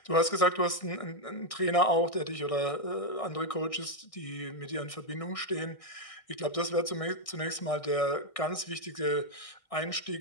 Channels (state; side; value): late; right; 1.6 ms